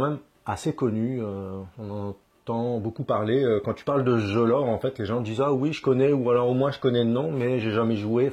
assez connu. On entend beaucoup parler. Quand tu parles de ce jeu-là, en fait, les gens disent « Ah oui, je connais » ou alors au moins je connais le nom, mais j'ai jamais joué.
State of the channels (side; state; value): both; identical; correlation 1.00